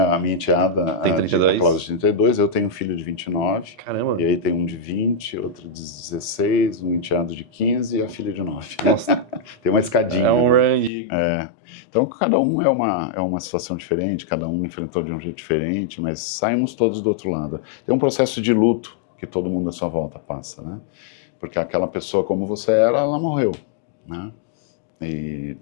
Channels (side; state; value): right; drops out; at 10.9 s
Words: minha enteada, Tem a 32? Cláudia de 32, eu tenho um filho de 29, Caramba. e aí tem um de 20, outro de 16, um enteado de 15 e a filha de 9. Nossa, Tem uma escadinha. é um né? range. Então, cada um é uma situação diferente, cada um enfrentou de um jeito diferente, mas saímos todos do outro lado. Tem um processo de luto que todo mundo à sua volta passa, né? Porque aquela pessoa como você era, ela morreu, né? E